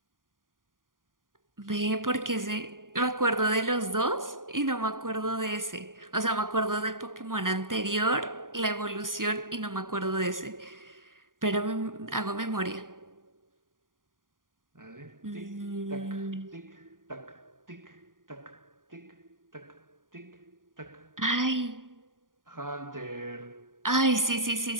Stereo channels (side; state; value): left; late; 0.90 ms